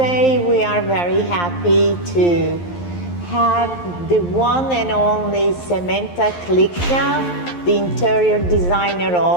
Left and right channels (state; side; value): late; right; 11 ms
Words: we are very happy to have the one and only Samantha Klickna, the interior designer